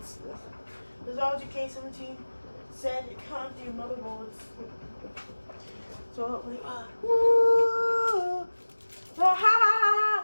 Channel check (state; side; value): inverted; both; correlation -1.00